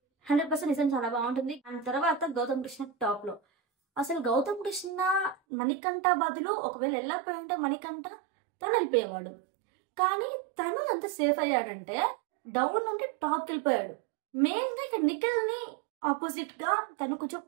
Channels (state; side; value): drops out; left; at 5.4 s